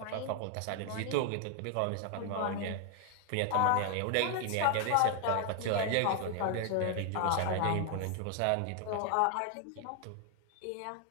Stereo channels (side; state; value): both; different; correlation 0.00